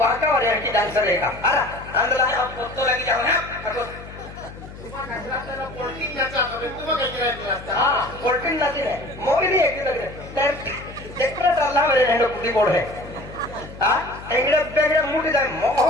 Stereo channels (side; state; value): left; noise; hum, 15 dB below the sound